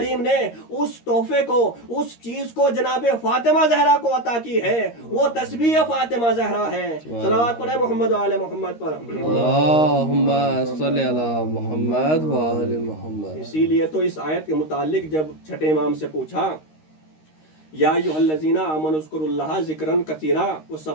ने उस तोहफे को उस चीज को जनाब फातिमा जहरा को अता की है, वो तस्बीह फातिमा जहरा है। सलावत पढ़े मोहम्मद वाले मोहम्मद पर। अल्लाहुम्मा सल्ली अला मुहम्मद व आले मुहम्मद। इसीलिए तो इस आयत के मुतालिक जब छठे इमाम से पूछा, या अय्युहल्लज़ीना आमनु उज़्कुरुल्लाह ज़िक्रन कसीरा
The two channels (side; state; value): right; late; 13 ms